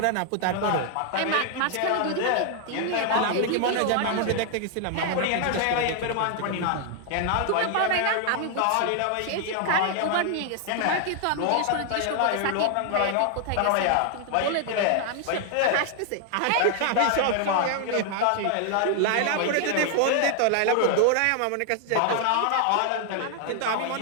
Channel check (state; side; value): different; both; correlation 0.00